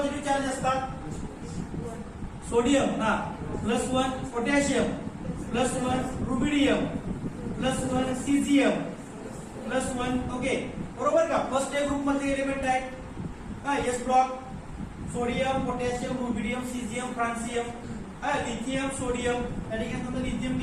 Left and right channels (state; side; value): identical; both; correlation 1.00